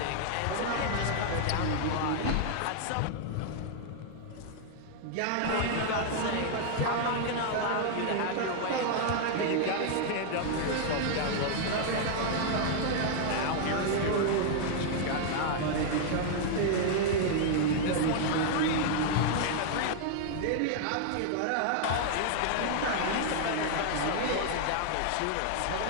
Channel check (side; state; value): both; different; correlation -0.01